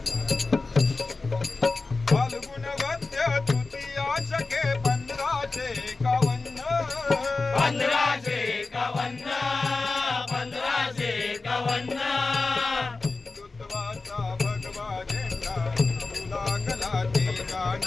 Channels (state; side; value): quieter; right; 3.7 dB